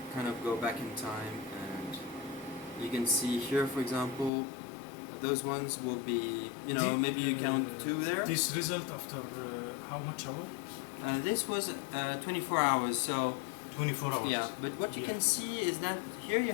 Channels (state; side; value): drops out; right; at 4.3 s